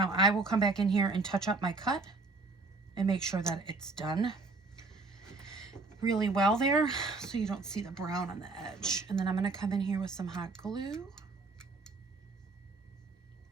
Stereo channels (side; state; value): left; quieter; 3.7 dB